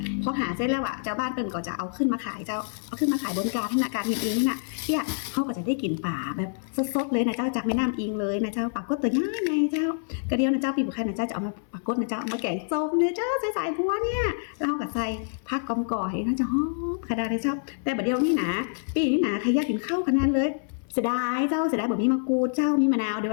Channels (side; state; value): right; silent; 60 dB below the other